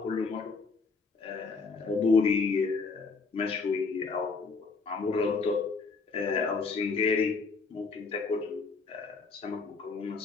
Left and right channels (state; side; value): quieter; right; 4.4 dB